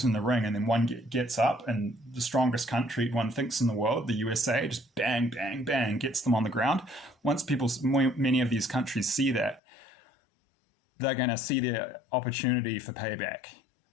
in the ring, and then one gets up, and the strongest country one thinks in the world, the USA, just bang, bang, bang, gets them on the ground. Once many of these countries see that, they're going to see their opportunity for payback.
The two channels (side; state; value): right; drops out; at 9.6 s